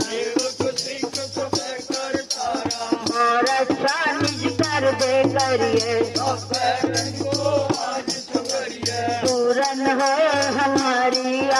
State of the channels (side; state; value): both; identical; correlation 1.00